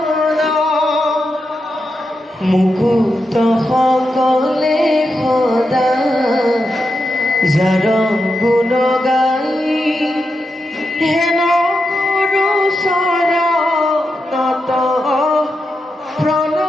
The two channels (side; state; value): both; normal; correlation 0.87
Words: মুকুত সকলে সদা যার গুণ গাই হেন গুরু শৰণত